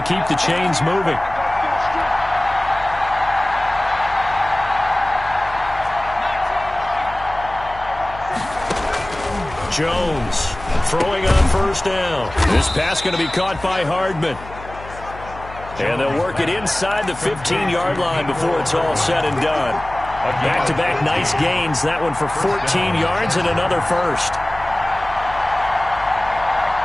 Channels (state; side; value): noise; left; hum, 15 dB below the sound